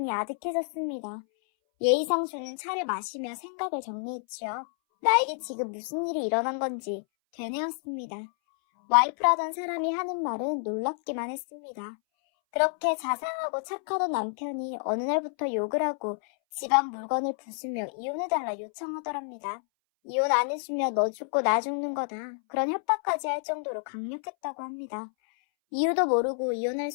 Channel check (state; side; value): silent; right; 59 dB below the other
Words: 아득해졌습니다. 예의상 주는 차를 마시며 생각을 정리했지요. 나에게 지금 무슨 일이 일어난 건지 되뇌었습니다. 와이프라던 사람이 하는 말은 놀랍기만 했습니다. 그렇게 자상하고 착하던 남편이 어느 날부터 욕을 하고 집안 물건을 부수며 이혼해달라 요청하더랍니다. 이혼 안 해주면 너 죽고 나 죽는 거다. 그런 협박까지 할 정도로 강력했다고 합니다. 이유도 모르고 이혼할